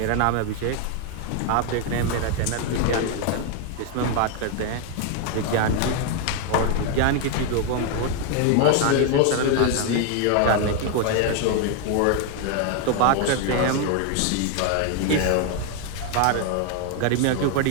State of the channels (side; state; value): both; different; correlation 0.01